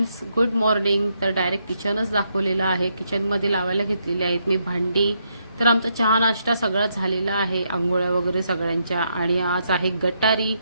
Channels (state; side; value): inverted; both; correlation -0.78